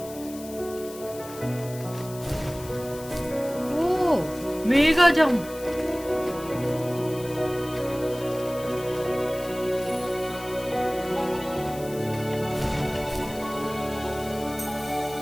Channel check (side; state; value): left; noise; hiss, 16 dB below the sound